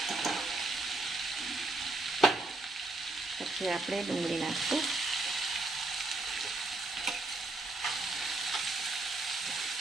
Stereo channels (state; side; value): quieter; left; 3.0 dB